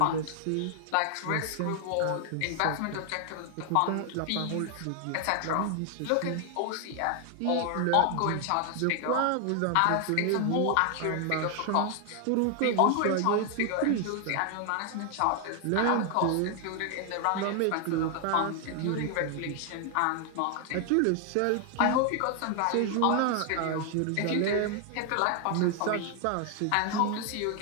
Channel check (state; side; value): different; both; correlation 0.00